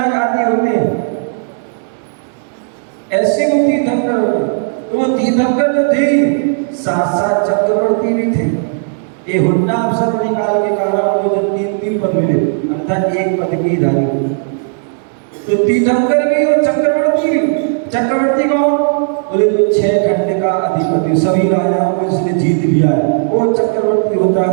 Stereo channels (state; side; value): silent; left; digital silence